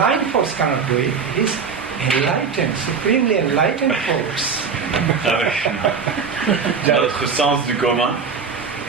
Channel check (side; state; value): left; quieter; 5.8 dB